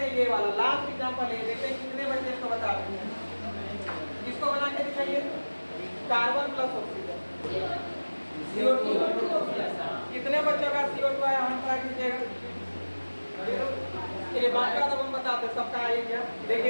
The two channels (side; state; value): both; inverted; correlation -1.00